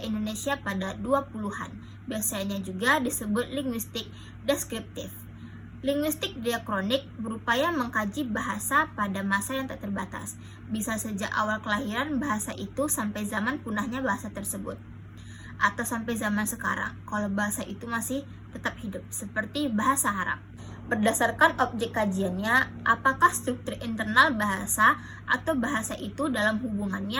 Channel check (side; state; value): both; identical; correlation 1.00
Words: Indonesia pada 20-an. Biasanya juga disebut linguistik deskriptif. Linguistik diakronik berupaya mengkaji bahasa pada masa yang tak terbatas, bisa sejak awal kelahiran bahasa itu sampai zaman punahnya bahasa tersebut, atau sampai zaman sekarang kalau bahasa itu masih tetap hidup, seperti bahasa Arab. Berdasarkan objek kajiannya, apakah struktur internal bahasa atau bahasa itu dalam